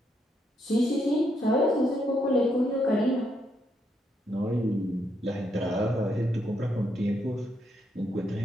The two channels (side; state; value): both; normal; correlation 0.77